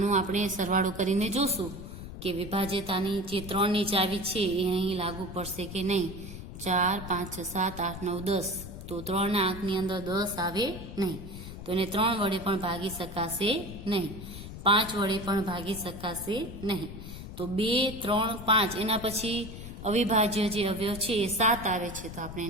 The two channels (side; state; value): left; noise; rumble, 11 dB below the sound